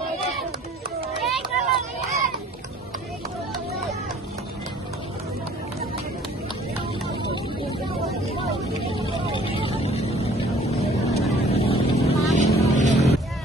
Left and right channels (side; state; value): both; normal; correlation 0.54